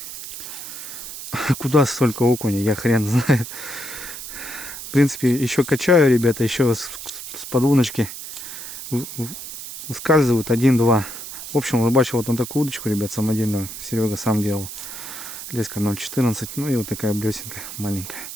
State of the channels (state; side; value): noise; right; hiss, 10 dB below the sound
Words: Куда столько окуня, я хрен знает. В принципе, еще качаю, ребята, еще с подвуночки выскальзывают 1-2. В общем, рыбачил вот на такую удочку, ребят, самодельную. Серега сам делал. Леска 0,14. Ну и вот такая блесенка маленькая.